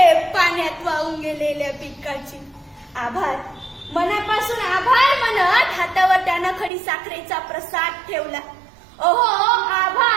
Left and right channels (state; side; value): drops out; left; at 6.7 s